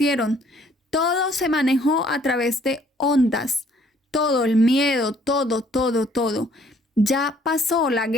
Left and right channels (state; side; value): normal; both; correlation 0.62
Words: Todo se manejó a través de ondas. Todo, el miedo, todo. Ya pasó la